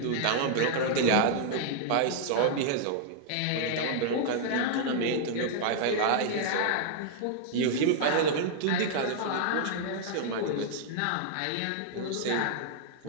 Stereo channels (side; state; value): both; different; correlation -0.01